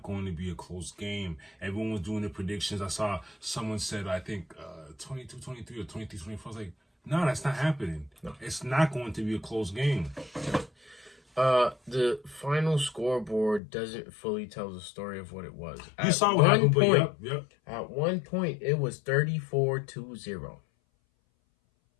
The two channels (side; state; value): right; drops out; at 13.6 s